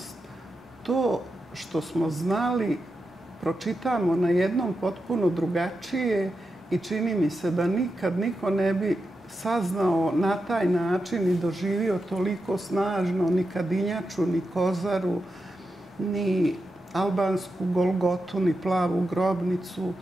to što smo znali pročitamo na jednom potpuno drugačije i čini mi se da nikad niko ne bi saznao na taj način i doživio toliko snažno ni Kadinjaču, ni Kozaru, ni albansku Golgotu, ni plavu grobnicu,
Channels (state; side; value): normal; both; correlation 0.89